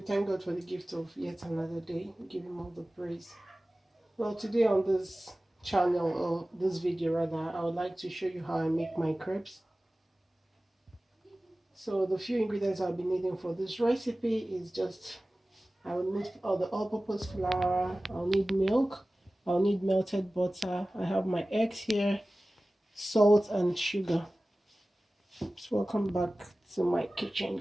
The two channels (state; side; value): normal; both; correlation 0.97